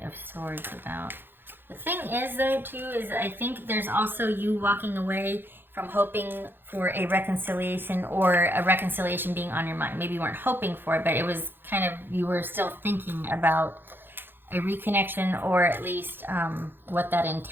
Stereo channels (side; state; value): left; late; 0.10 ms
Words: of Swords about? The thing is, though, too, is I think there's also you walking away from hoping for a reconciliation or a reconciliation being on your mind. Maybe you weren't hoping for it, but it was kind of, you were still thinking about a reconnection or at least what that